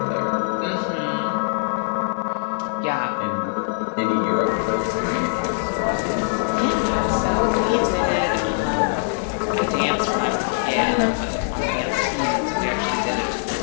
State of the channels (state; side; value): silent; right; digital silence